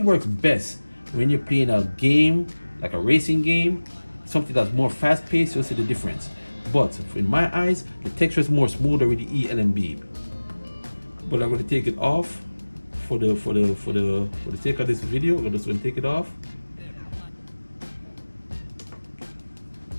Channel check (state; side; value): inverted; both; correlation -1.00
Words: works best when you're playing a game, like a racing game, something that's more fast-paced. You'll see the difference. But in my eyes, the texture is more smoother with the ELMB. But I'm going to take it off for the sake of this video. I'm just going to take it off,